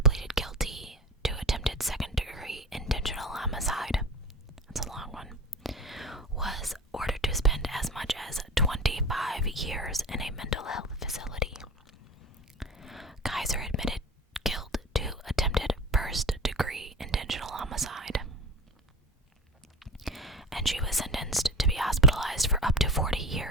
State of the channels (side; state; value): both; normal; correlation 0.32